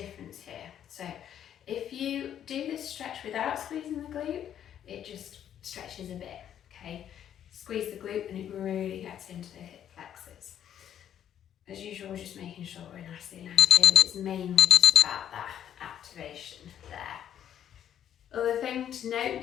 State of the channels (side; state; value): right; quieter; 10.2 dB